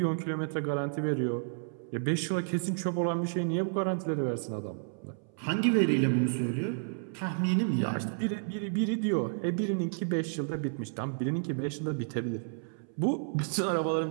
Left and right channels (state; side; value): silent; left; 57 dB below the other